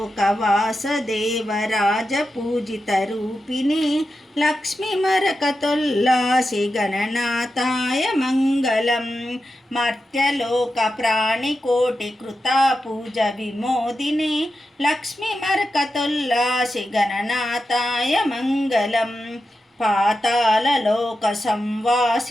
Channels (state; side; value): normal; both; correlation 0.90